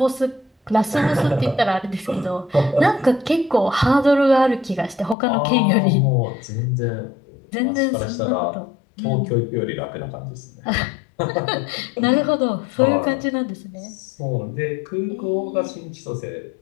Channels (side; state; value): right; drops out; at 5.2 s